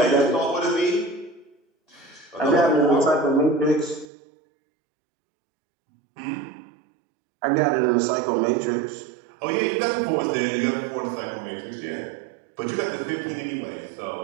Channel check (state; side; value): drops out; left; at 4.0 s